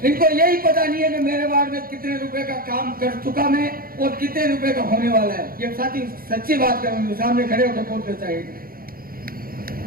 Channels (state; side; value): late; left; 0.42 ms